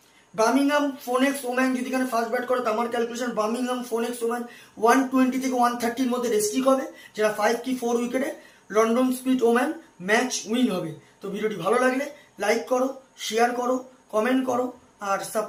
বার্মিংহাম ফোনেক্স ওম্যান যদি এখানে ফার্স্ট ব্যাট করে, তো আমার ক্যালকুলেশন বার্মিংহাম ফোনেক্স ওম্যান 120 থেকে 130 মধ্যে রেস্ট্রিক হবে, যেটা 5 কি 4 উইকেটে London Spirit woman match win হবে। তো ভিডিওটি ভালো লাগলে লাইক করো, শেয়ার করো, কমেন্ট করো আর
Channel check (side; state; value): both; identical; correlation 1.00